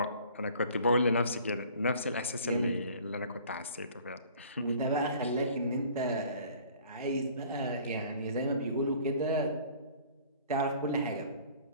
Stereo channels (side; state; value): both; inverted; correlation -0.51